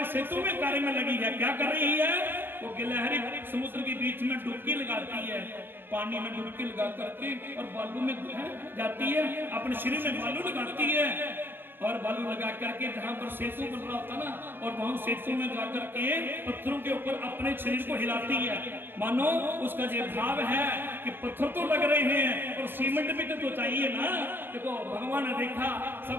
सेतु में कार्य में लगी है। क्या कर रही है, वो गिलहरी समुद्र के बीच में डुबकी लगाती है, पानी में डुबकी लगा करके और बालू में जाती है, अपने शरीर में बालू लगाती है और बालू लगा करके जहां पर सेतु बन रहा होता ना, और वहां सेतु में जाकर के पत्थरों के ऊपर अपने शरीर को हिलाती है। मानो उसका ये भाव है कि पत्थर तो लग रहे हैं और सीमेंट भी तो चाहिए ना। देखो भगवान ने देखा,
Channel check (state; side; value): late; left; 0.098 ms